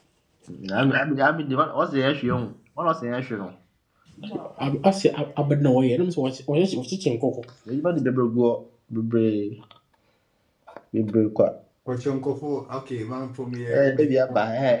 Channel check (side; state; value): both; identical; correlation 1.00